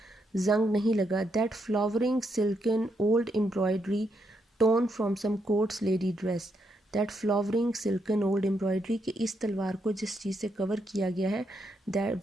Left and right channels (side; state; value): both; normal; correlation 0.79